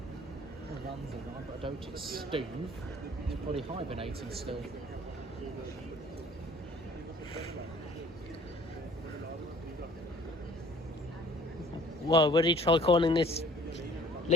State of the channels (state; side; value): normal; both; correlation 0.53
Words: The land's alive, but I don't it's Steve. He's probably hibernating still. Well, would he try calling this